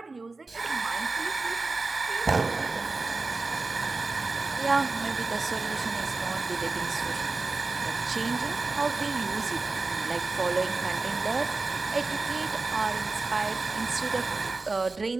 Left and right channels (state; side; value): quieter; left; 3.7 dB